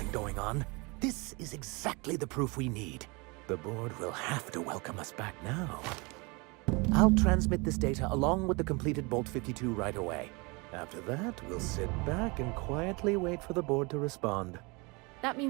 going on. This is exactly the proof we need. The board will have to welcome us back now. I'll transmit this data along with the completed Bolt 52 right away. After that, we'll sit back and quietly wait for the board to respond. That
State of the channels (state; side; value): quieter; left; 27.9 dB